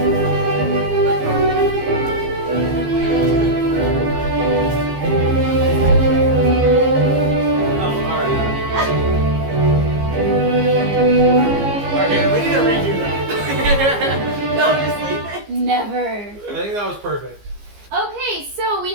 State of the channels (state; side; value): late; left; 15 ms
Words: Okay, we need to redo that. No, just leave it. Never. I think that was perfect. Okay, so we